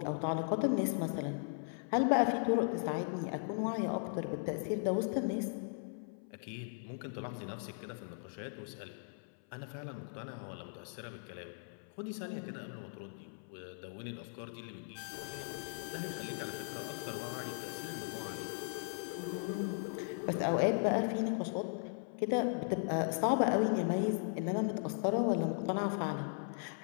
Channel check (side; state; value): right; silent; 53 dB below the other